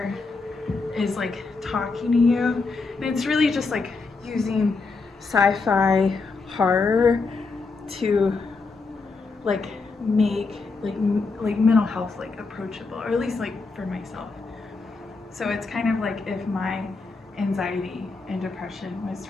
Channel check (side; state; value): right; quieter; 4.1 dB